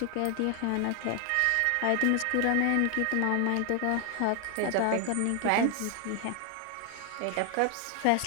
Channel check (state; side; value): different; both; correlation 0.00